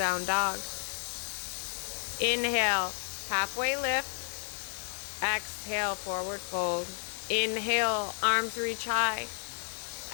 dog. Inhale, halfway lift. Exhale, forward fold. Inhale, arms reach high.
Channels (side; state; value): right; silent; 57 dB below the other